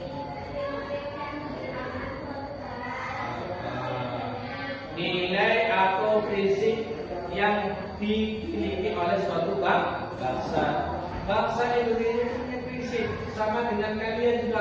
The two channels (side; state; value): both; identical; correlation 1.00